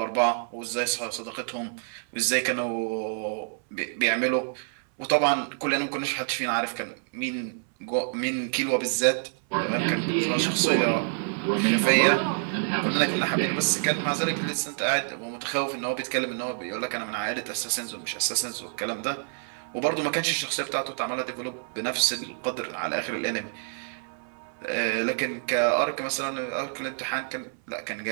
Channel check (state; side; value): silent; left; 60 dB below the other